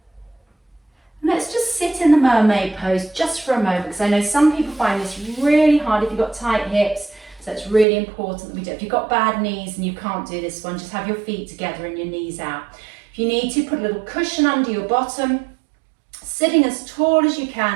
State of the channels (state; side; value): drops out; left; at 7.9 s